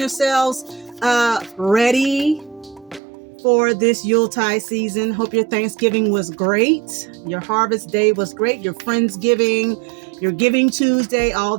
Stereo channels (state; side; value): drops out; left; at 3.0 s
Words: ready for this Yuletide season. Hope your Thanksgiving was great. Your Harvest Day was great. Your Friendsgiving, your Giving Tuesday, all